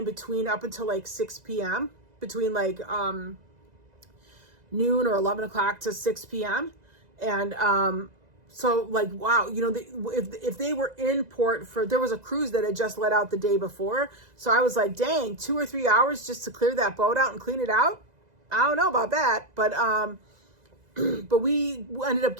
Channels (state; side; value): late; left; 2.0 ms